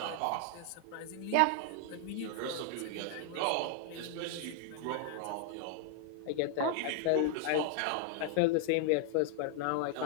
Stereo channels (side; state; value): both; different; correlation 0.00